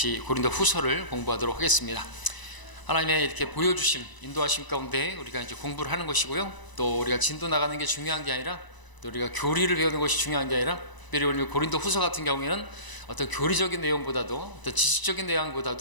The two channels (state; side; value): late; right; 1.0 ms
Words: 고린도 후서를 공부하도록 하겠습니다. 하나님의 이렇게 보여주심, 인도하심 가운데 우리가 이제 공부를 하는 것이고요. 또 우리가 진도 나가는 게 중요한 게 아니라, 또 우리가 교리를 배우는 것이 중요한 게 아니라, 특별히 오늘 고린도 후서 같은 경우에는 어떤 교리적인 내용보다도, 어떤 지식적인